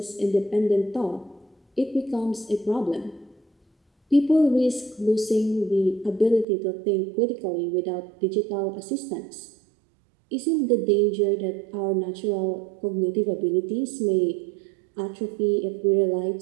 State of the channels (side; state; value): left; drops out; at 6.5 s